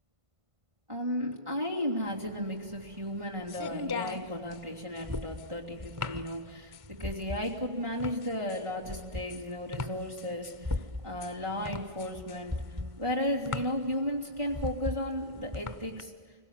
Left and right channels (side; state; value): left; late; 1.5 ms